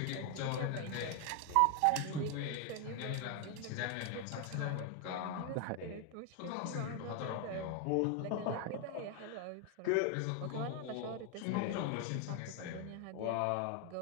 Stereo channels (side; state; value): both; different; correlation 0.01